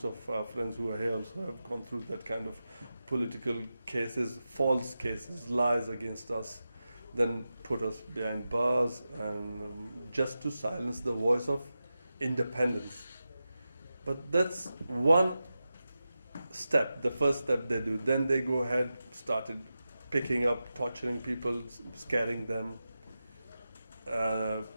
of our friends who are here also have gone through that kind of political cases, false cases, lies against us, then put us behind bars, and just to silence the voice of independence. But that's one step, the first step they do. Then they go ahead, started picking up, torturing people, scaring them,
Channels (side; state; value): both; inverted; correlation -0.92